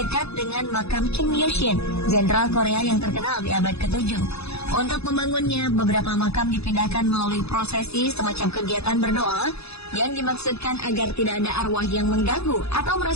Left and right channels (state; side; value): late; right; 0.79 ms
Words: dekat dengan makam Kim Il-sung, jenderal Korea yang terkenal di abad ke-7. Untuk membangunnya, beberapa makam dipindahkan melalui prosesi semacam kegiatan berdoa yang dimaksudkan agar tidak ada arwah yang mengganggu atau